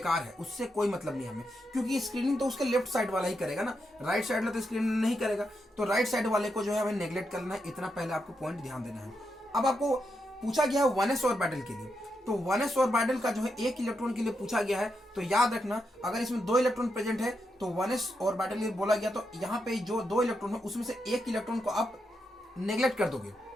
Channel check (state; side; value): normal; both; correlation 0.84